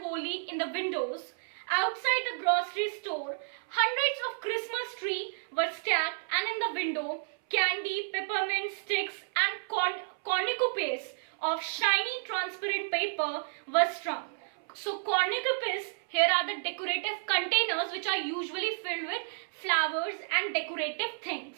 holly in the windows. Outside the grocery store, hundreds of Christmas trees were stacked, and in the window, candy, peppermint sticks and cornucopias of shiny transparent paper were strung. So cornucopias here are the decorative containers which are usually filled with flowers and decorative things.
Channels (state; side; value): silent; left; 57 dB below the other